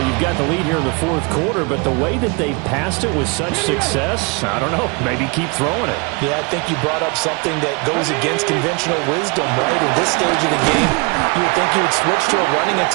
You've got the lead here in the 4th quarter, but the way that they've passed it with such success, I don't know, maybe keep throwing it. Yeah, I think you brought up something that goes against conventional wisdom, right? In this stage of the game, you would think you would switch to a running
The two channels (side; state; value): left; quieter; 30.3 dB